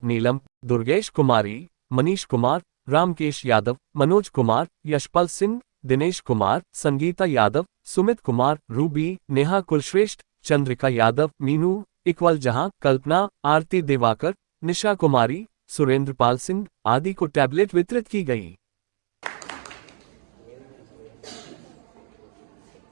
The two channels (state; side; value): silent; left; digital silence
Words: नीलम, दुर्गेश कुमारी, मनीष कुमार, रामकेश यादव, मनोज कुमार, यशपाल सिंह, दिनेश कुमार, संगीता यादव, सुमित कुमार, रूबी, नेहा कुलश्रेष्ठ, चंद्रिका यादव, मीनू, इकबाल जहां, कल्पना, आरती दिवाकर, निशा कुमारी, सुरेंद्रपाल सिंह आदि को टैबलेट वितरित की गई।